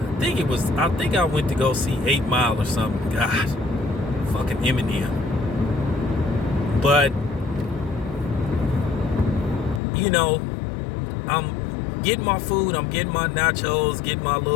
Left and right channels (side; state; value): right; drops out; at 9.8 s